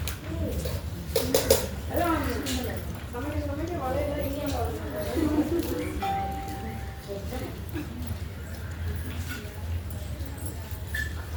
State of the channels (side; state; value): both; identical; correlation 1.00